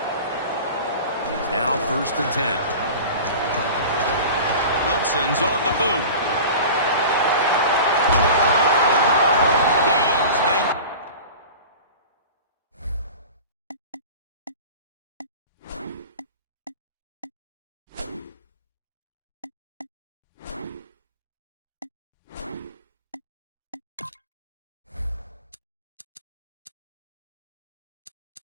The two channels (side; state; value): both; inverted; correlation -0.35